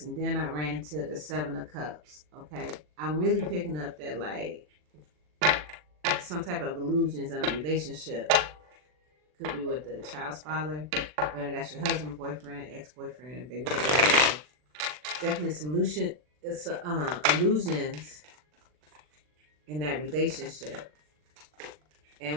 and then I ran into the Seven of Cups. Okay, I'm really picking up that, like, some type of illusions in a relationship. Could be with the child's father, whether that's your husband, boyfriend, ex-boyfriend, baby daddy, whatever. Definitely some illusions in that relationship.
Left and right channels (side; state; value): left; late; 40 ms